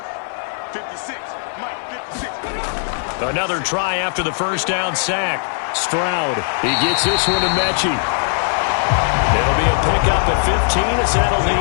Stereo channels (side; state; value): right; silent; 67 dB below the other